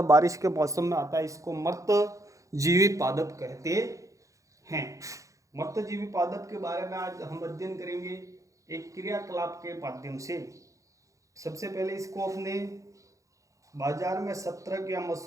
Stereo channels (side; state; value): left; late; 0.15 ms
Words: बारिश के मौसम में आता है। इसको मृतजीवी पादप कहते हैं। मृतजीवी पादप के बारे में आज हम अध्ययन करेंगे एक क्रियाकलाप के माध्यम से। सबसे पहले इसको अपने बाजार में छत्रक या